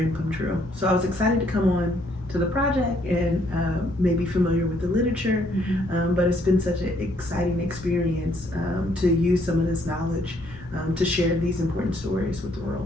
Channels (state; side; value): noise; left; hum, 20 dB below the sound